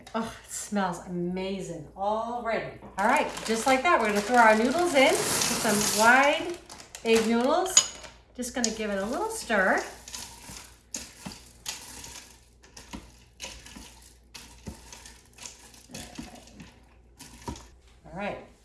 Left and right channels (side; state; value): both; identical; correlation 1.00